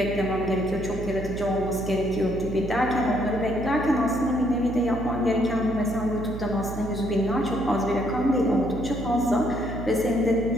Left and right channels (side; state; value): right; noise; hum, 8 dB below the sound